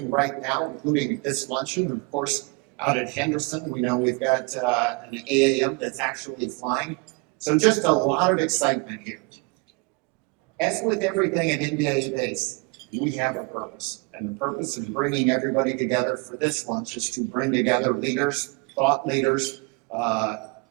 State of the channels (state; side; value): quieter; left; 29.6 dB